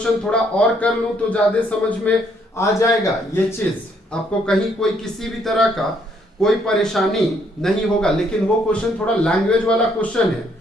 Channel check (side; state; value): both; normal; correlation 0.69